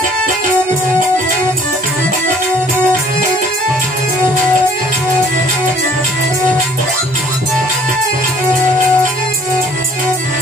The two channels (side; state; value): both; normal; correlation 0.56